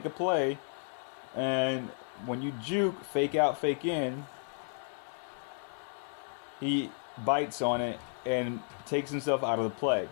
a play, and when you juke, fake out, fake in, he bites on it and takes himself out of the play.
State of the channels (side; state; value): right; silent; 56 dB below the other